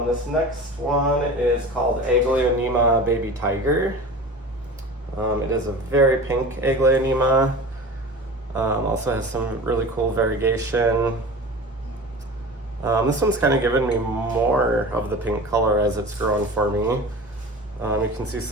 This next one is called Aglaonema Baby Tiger. It is a very pink Aglaonema. Also has some really cool variegation. This one's kind of given me more of the pink color as it's grown for me. You can see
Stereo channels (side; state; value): both; normal; correlation 0.35